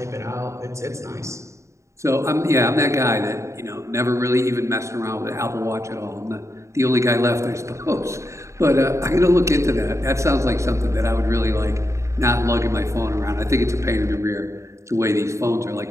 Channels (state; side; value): late; left; 0.14 ms